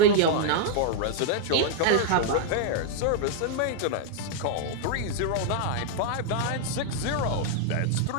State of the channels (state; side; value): different; both; correlation -0.01